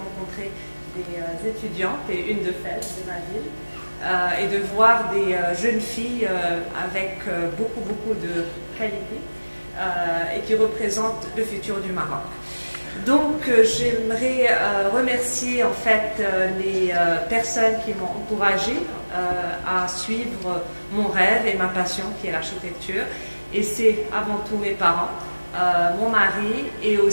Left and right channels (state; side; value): inverted; both; correlation -1.00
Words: des étudiantes et une de Fès, de ma ville, et de voir des jeunes filles avec beaucoup de qualité et qui représentent le futur du Maroc. Donc j'aimerais remercier en fait les personnes qui m'ont encouragée à suivre mon rêve et ma passion qui est l'architecture. Et c'est avant tout mes parents, mon mari et